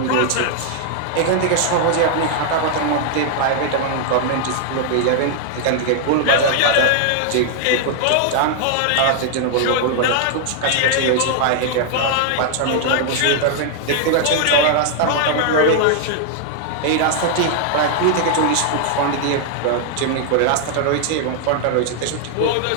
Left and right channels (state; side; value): different; both; correlation 0.00